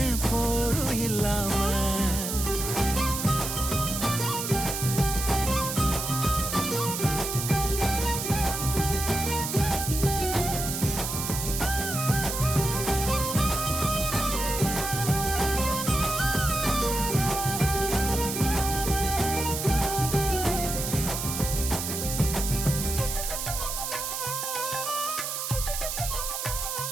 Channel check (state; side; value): noise; right; hiss, 4 dB below the sound